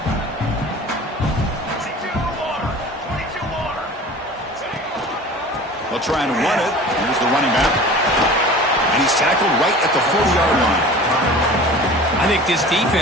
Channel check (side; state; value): both; normal; correlation 0.40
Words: They'll try and run it. Here's the running back. And he's tackled right at the 40-yard line. I think this